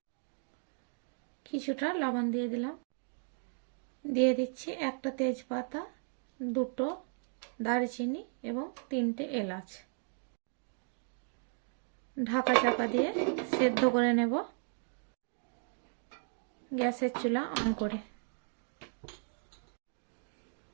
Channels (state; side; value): silent; left; 54 dB below the other